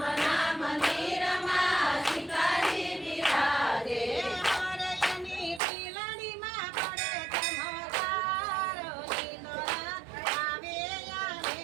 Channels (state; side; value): drops out; left; at 5.6 s